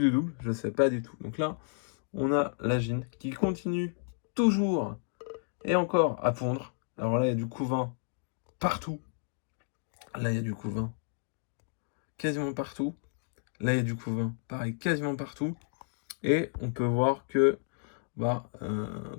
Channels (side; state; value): right; silent; digital silence